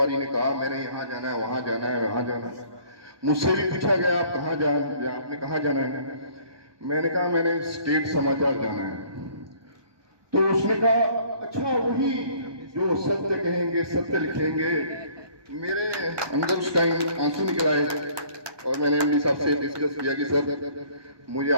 ने कहा मैंने यहाँ जाना है, वहाँ जाना है, वहाँ जाना है। मुझसे भी पूछा गया आप कहाँ आपने कहाँ जाना है? मैंने कहा मैंने स्टेट समाचार जाना है। तो उसने कहा अच्छा वही जो सत्य कहेंगे सत्य लिखेंगे। मेरे अंदर उस टाइम आंसू निकल आए और मैंने एमडी साहब से डिस्कस किया कि सर मुझे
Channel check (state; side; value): late; left; 1.2 ms